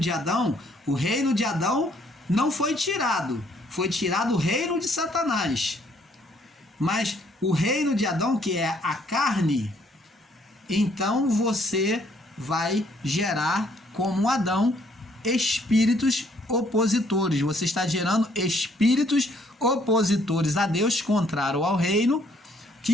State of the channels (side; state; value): both; normal; correlation 0.65